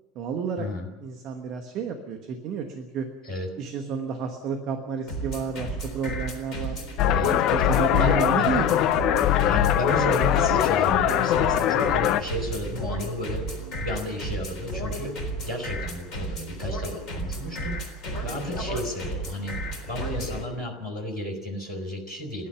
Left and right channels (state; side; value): quieter; right; 4.6 dB